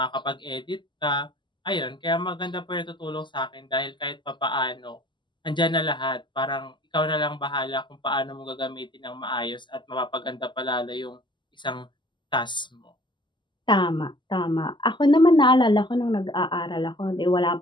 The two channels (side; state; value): right; late; 0.22 ms